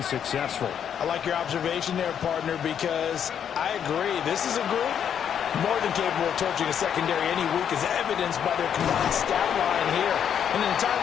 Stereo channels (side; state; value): right; quieter; 8.6 dB